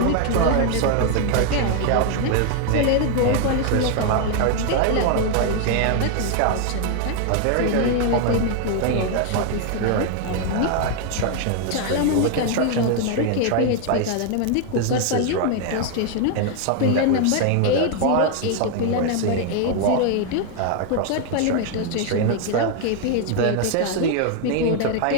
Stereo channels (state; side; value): different; both; correlation 0.00